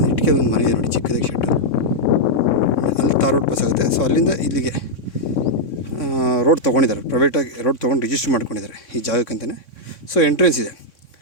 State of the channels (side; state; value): right; late; 3.6 ms